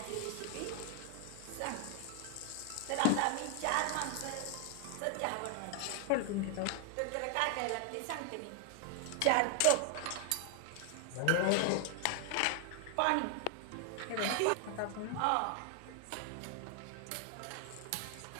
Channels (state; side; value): different; both; correlation 0.00